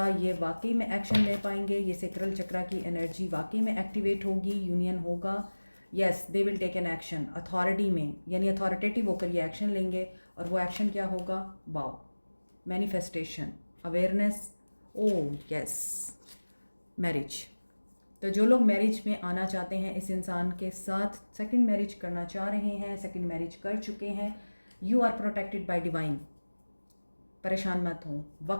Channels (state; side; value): inverted; both; correlation -1.00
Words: ये वाकई में एक्शन ले पाएंगे? ये सेक्रल चक्रा की एनर्जी वाकई में एक्टिवेट होगी, यूनियन होगा? Yes, they will take an action authority में, यानी अथॉरिटेटिव होकर ये एक्शन लेंगे। और वो एक्शन क्या होगा? Wow, manifestation, awareness. Oh yes, marriage. तो जो लोग मैरिज में आना चाहते हैं इस इंसान के साथ, सेकंड मैरिज करना चाह रहे हैं, सेकंड मैरिज कर चुके हैं, you are protected by divine. परेशान मत हो।